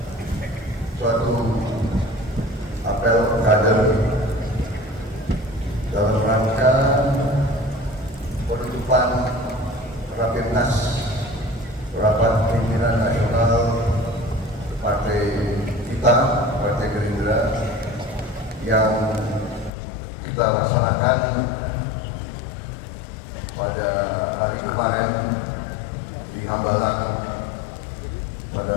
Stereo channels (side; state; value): right; drops out; at 19.7 s